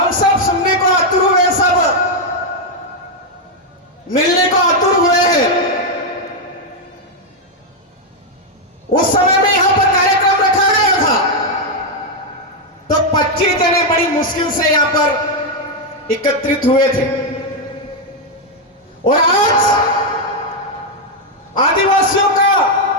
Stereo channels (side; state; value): both; normal; correlation 0.02